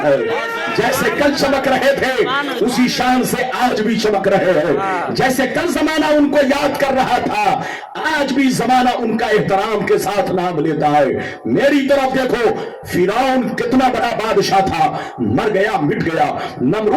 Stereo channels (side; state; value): both; identical; correlation 1.00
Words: है, जैसे कल चमक रहे थे उसी शान से आज भी चमक रहे हैं, जैसे कल जमाना उनको याद कर रहा था आज भी जमाना उनका एहतराम के साथ नाम लेता है। मेरी तरफ देखो, फिरौन कितना बड़ा बादशाह था, मर गया, मिट गया।